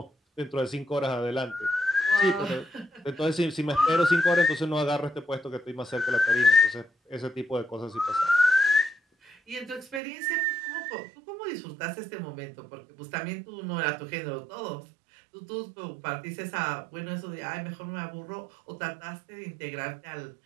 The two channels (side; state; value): left; drops out; at 10.0 s